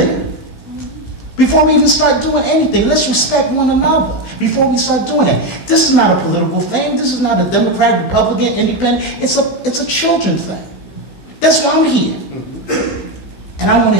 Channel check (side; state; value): right; late; 16 ms